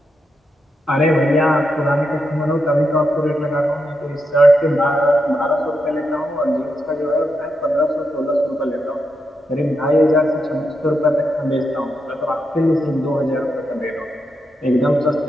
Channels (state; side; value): normal; both; correlation 0.84